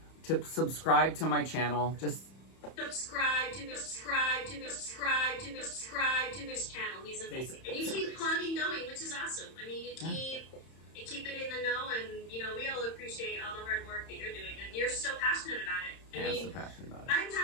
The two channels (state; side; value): late; right; 31 ms